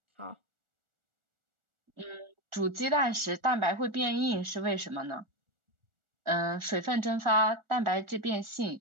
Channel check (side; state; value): left; late; 1.4 ms